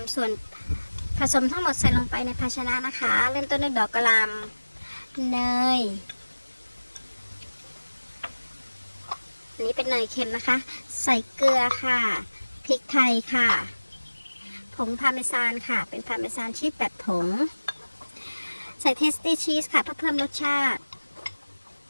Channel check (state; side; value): inverted; both; correlation -1.00